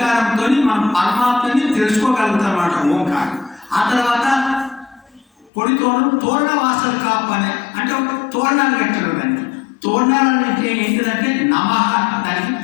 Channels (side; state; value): right; drops out; at 5.5 s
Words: మనం పరమాత్మని తెలుసుకోగలుగుతాం అన్నమాట ఓంకారం. ఆ తర్వాత పొడి తోరణ వాసలు కాపనే అంటే ఒక తోరణాలు కట్టారు. దానికి తోరణాలు అంటే ఏంటిదంటే నమః దానికి